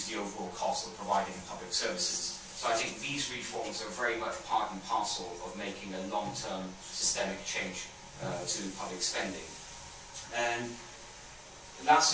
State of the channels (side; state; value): both; identical; correlation 1.00